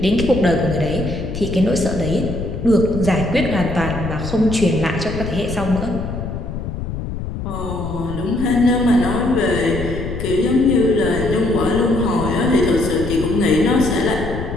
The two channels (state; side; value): noise; left; rumble, 6 dB below the sound